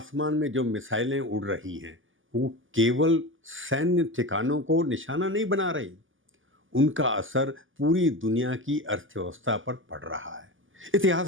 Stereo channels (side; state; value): left; late; 0.58 ms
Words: में जो मिसाइलें उड़ रही हैं वो केवल सैन्य ठिकानों को निशाना नहीं बना रही, उनका असर पूरी दुनिया की अर्थव्यवस्था पर पड़ रहा है।